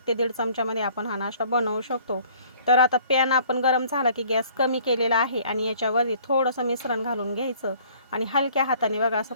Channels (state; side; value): inverted; both; correlation -0.55